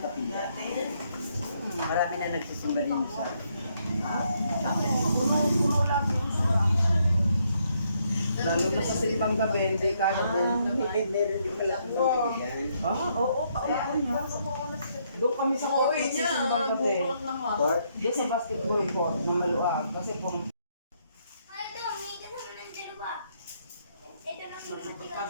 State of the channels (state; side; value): inverted; both; correlation -0.74